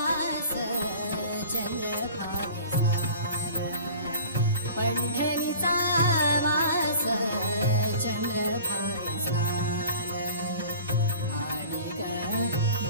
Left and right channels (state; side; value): inverted; both; correlation -0.43